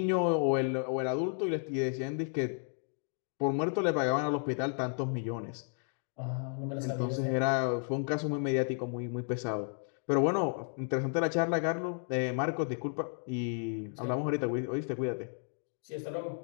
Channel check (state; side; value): silent; right; 56 dB below the other